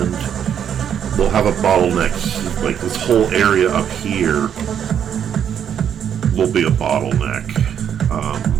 we'll have a bottleneck. Like this whole area up here will be a bottleneck,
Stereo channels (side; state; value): left; quieter; 8.8 dB